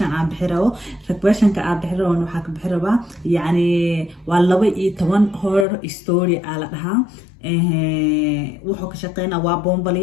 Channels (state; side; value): drops out; right; at 5.7 s